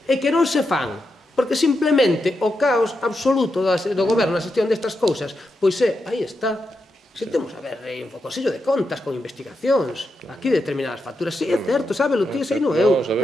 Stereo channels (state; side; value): normal; both; correlation 0.86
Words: e que non se fan porque simplemente o caos absoluto do goberno na xestión destas cousas, pois aí está. Se temos a ver un focosillo de contas con investigacións, aquí determinadas facturas, sí, é certo, sábelo ti, sei non eu,